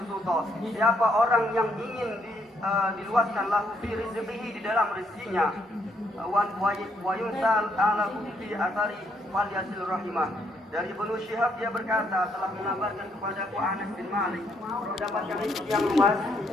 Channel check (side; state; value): both; normal; correlation 0.72